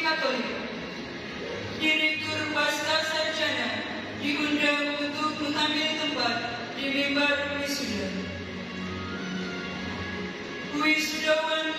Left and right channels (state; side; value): identical; both; correlation 1.00